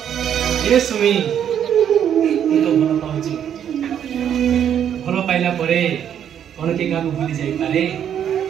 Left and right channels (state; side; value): quieter; left; 9.3 dB